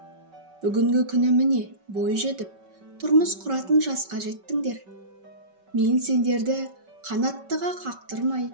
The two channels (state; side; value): late; left; 5.3 ms